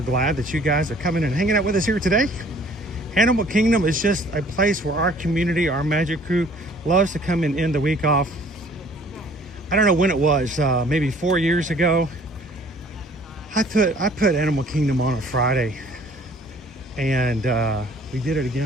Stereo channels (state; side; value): normal; both; correlation 0.55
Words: glad that you guys are coming and hanging out with us here today. Animal Kingdom is just a place where our community, our magic crew, loves to come and end the week off. I don't know when it was, maybe 4 years ago. I put Animal Kingdom on a Friday, and we did it